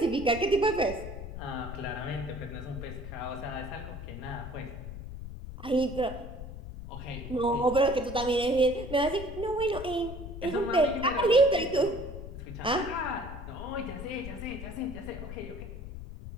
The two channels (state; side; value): noise; left; rumble, 10 dB below the sound